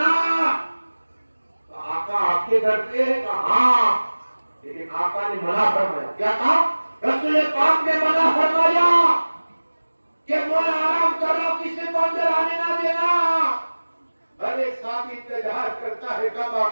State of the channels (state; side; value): inverted; both; correlation -1.00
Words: آقا آپ کے گھر پہ کہا ہاں لیکن آقا نے منع فرمایا کیا کہا رسول پاک نے منع فرمایا کہ مولا آرام کرو کسی کو اندر آنے نہ دینا ہر ایک صحابی انتظار کرتا ہے کب